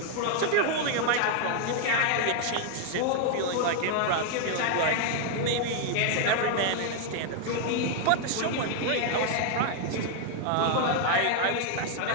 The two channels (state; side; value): different; both; correlation 0.00